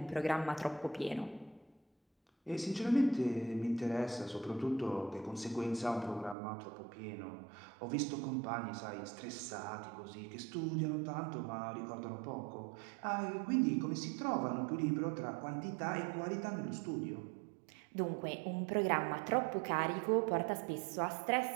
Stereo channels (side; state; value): left; drops out; at 6.4 s